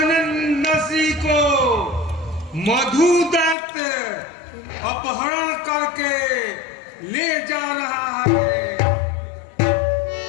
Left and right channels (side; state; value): right; drops out; at 3.6 s